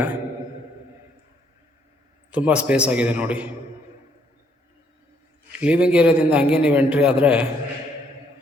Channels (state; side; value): normal; both; correlation 0.69